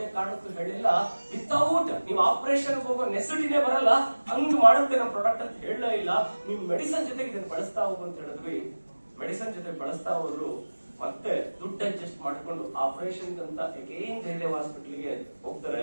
ಕಾರಣಕ್ಕೂ ಹೇಳಿಲ್ಲ ವಿತೌಟ್ ನೀವು ಆಪರೇಷನ್ ಹೋಗೋ ನೆಸಿಟಿನೇ ಬರಲ್ಲ, ಹಂಗ್ ಮಾಡುತ್ತೆ ನಮ್ಮ ಪ್ರಾಡಕ್ಟ್ ಅಂತ ಹೇಳಲೇ ಇಲ್ಲ. ನೀವು ಮೆಡಿಸಿನ್ ಜೊತೆಗೆ ಇದನ್ನ ಬಳಸ್ತಾ ಹೋಗು ಅಂತ ಹೇಳಿದ್ವಿ. ಮೆಡಿಸಿನ್ ಜೊತೆ ಬಳಸ್ತಾ ಹೋದ್ರು. ಮತ್ತೆ ದುಡ್ಡು ಅಡ್ಜಸ್ಟ್ ಮಾಡ್ಕೊಂಡು ಆಪರೇಷನ್ ಅಂತ ಅಗೇನ್ ಜಯದೇವ್ ಹಾಸ್ಪಿಟಲ್ಗೆ ಹೋಗ್ತಾರೆ.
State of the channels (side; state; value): both; inverted; correlation -1.00